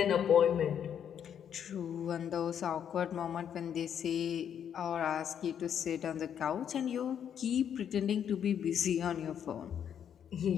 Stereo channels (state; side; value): quieter; right; 8.8 dB